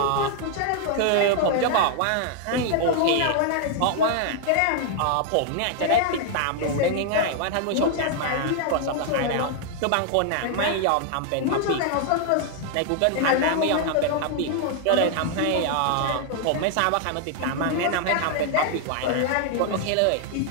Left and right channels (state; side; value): different; both; correlation 0.00